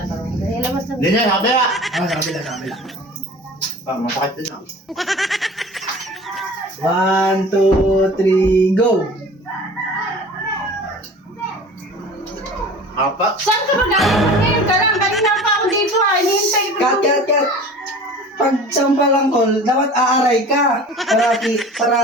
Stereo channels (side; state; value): both; normal; correlation 0.41